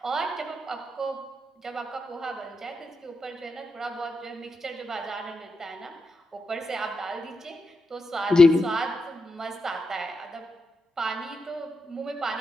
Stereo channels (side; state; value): both; normal; correlation 0.85